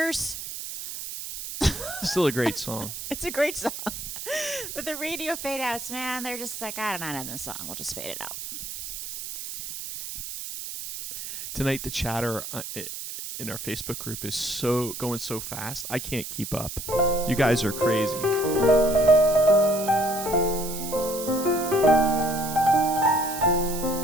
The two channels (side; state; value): right; noise; hiss, 8 dB below the sound